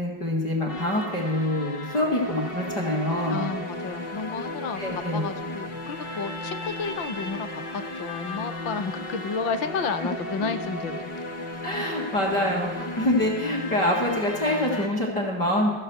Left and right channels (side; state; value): right; late; 5.1 ms